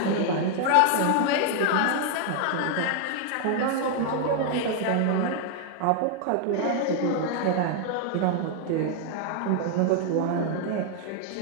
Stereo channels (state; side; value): different; both; correlation 0.00